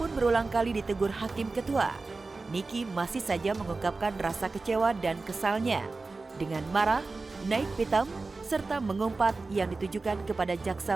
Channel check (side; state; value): left; quieter; 3.7 dB